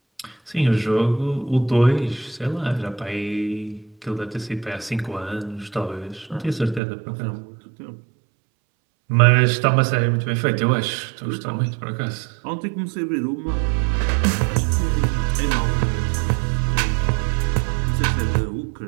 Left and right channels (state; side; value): drops out; left; at 6.8 s